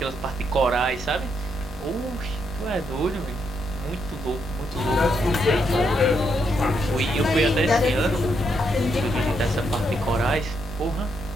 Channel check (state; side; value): normal; both; correlation 0.77